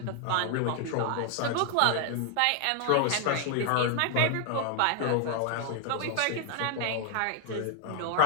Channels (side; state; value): both; different; correlation 0.00